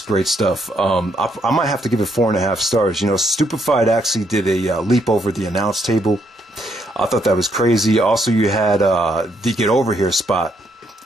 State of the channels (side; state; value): both; normal; correlation 0.73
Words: great stuff. I might have to give it 4.5 stars. You know, Stupefied actually did a leap over the announce table. I thought that was crazy. Also, you had the Get Over Here spot